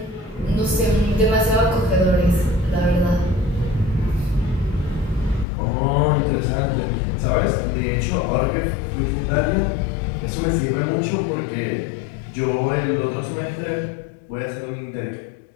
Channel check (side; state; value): right; drops out; at 5.5 s